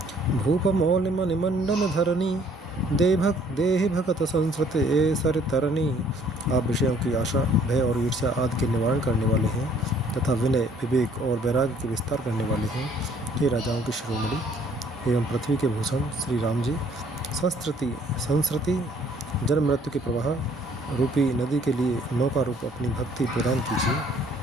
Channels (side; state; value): both; normal; correlation 0.60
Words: भूप मौल मणिमंडन धरणी देहि भगत संस्कृत ए सर तरणी। आप विषयों की आशा भय और ईर्ष्या आदि के निवारण करने वाले हैं तथा विनय विवेक और वैराग्य के विस्तार करने वाले हैं। हे राजाओं की शिरोमणि एवं पृथ्वी के भूषण श्री राम जी, संस्कृति जन्म मृत्यु के प्रवाह रूपी नदी के लिए नौका रूप अपनी भक्ति प्रदान